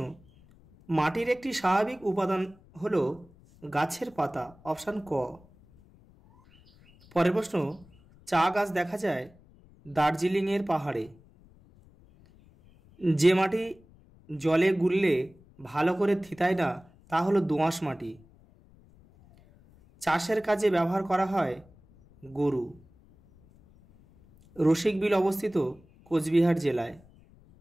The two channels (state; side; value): noise; left; rumble, 27 dB below the sound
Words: মাটির একটি স্বাভাবিক উপাদান হলো গাছের পাতা, অপশান ক। পরের প্রশ্ন, চা গাছ দেখা যায় দার্জিলিংয়ের পাহাড়ে। যে মাটি জলে গুললে ভালো করে থিতায় না তা হলো দোআঁশ মাটি। চাষের কাজে ব্যবহার করা হয় গরু। রসিকবিল অবস্থিত কোচবিহার জেলায়।